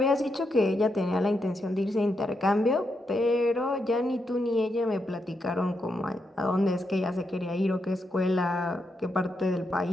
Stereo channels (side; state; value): both; normal; correlation 0.83